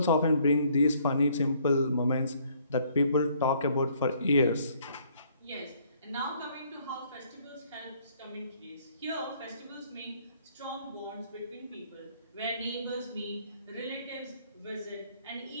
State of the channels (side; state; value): both; inverted; correlation -0.64